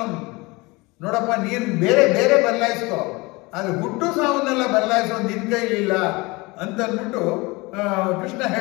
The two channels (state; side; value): quieter; right; 24.2 dB